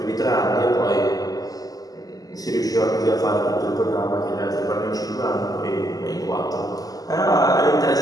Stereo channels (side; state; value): right; late; 0.17 ms